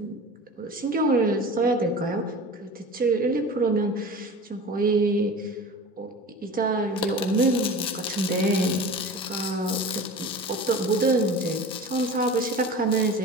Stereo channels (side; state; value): both; normal; correlation 0.36